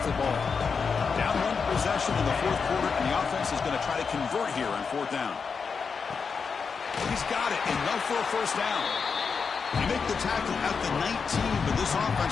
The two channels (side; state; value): right; quieter; 5.6 dB